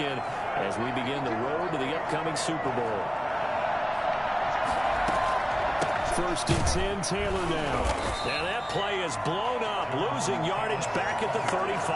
as we begin the road to the upcoming Super Bowl. 1st and 10, Taylor now. Now that play is blown up, losing yardage back at the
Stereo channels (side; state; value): both; identical; correlation 1.00